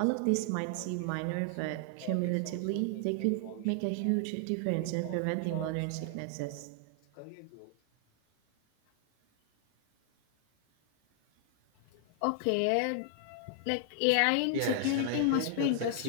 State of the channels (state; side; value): different; both; correlation 0.00